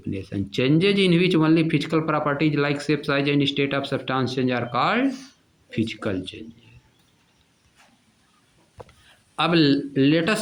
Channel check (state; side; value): identical; both; correlation 1.00